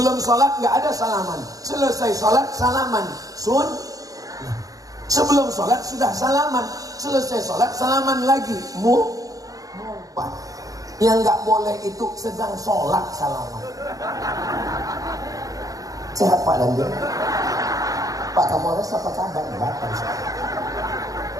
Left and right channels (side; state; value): left; late; 0.17 ms